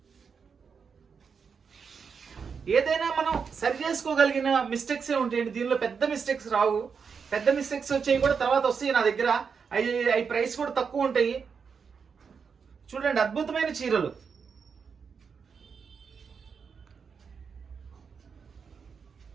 ఏదైనా మనం సరి చేసుకోగలిగిన మిస్టేక్సే ఉంటాయండి, దీనిలో పెద్ద మిస్టేక్స్ రావు. పెద్ద మిస్టేక్స్ వచ్చేవి కూడా తర్వాత వస్తాయి నా దగ్గర. అవి ప్రైస్ కూడా తక్కువ ఉంటాయి. చూడండి అద్భుతమైన చీరలు.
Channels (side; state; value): left; quieter; 6.0 dB